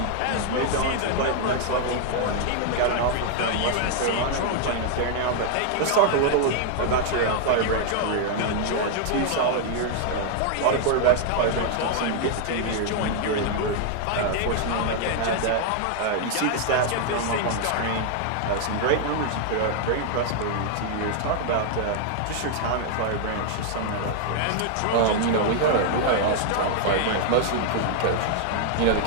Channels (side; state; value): both; different; correlation 0.00